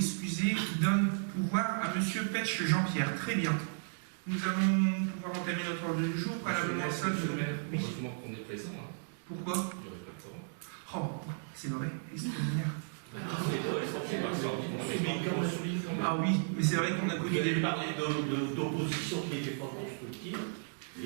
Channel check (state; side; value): silent; left; digital silence